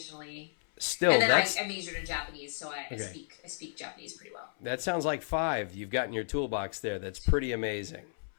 Still, and then I majored in Japanese, so I speak Japanese pretty well. That sounds like 5 you've got in your toolbox there. That's pretty amazing.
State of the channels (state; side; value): silent; right; 56 dB below the other